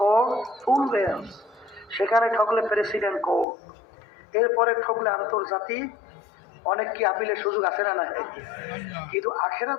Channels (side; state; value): right; drops out; at 3.5 s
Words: ফুল বেঞ্চ, সেখানে ঠকলে প্রেসিডেন্ট কোর্ট, এরপরে ঠকলে আন্তর্জাতিক অনেক কি আপিলের সুযোগ আছে না? নাই। কিন্তু